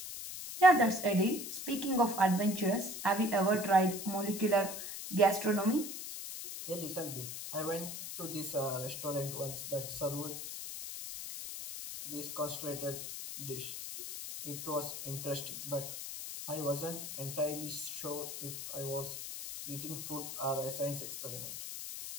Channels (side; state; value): left; noise; hiss, 7 dB below the sound